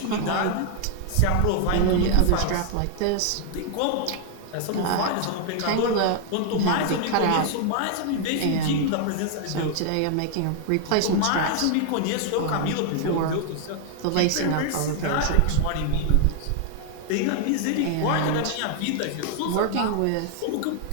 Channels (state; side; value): different; both; correlation 0.00